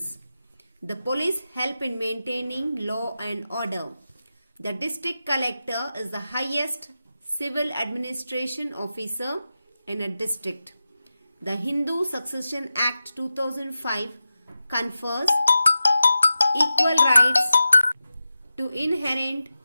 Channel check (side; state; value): both; inverted; correlation -0.93